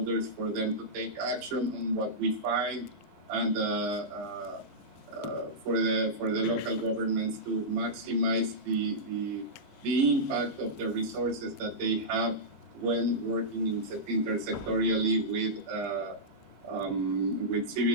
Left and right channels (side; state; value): both; normal; correlation -0.13